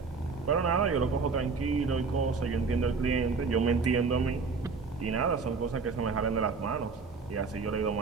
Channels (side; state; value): left; quieter; 4.7 dB